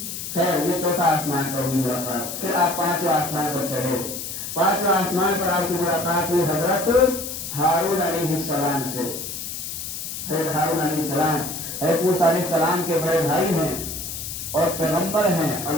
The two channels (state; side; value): noise; left; hiss, 7 dB below the sound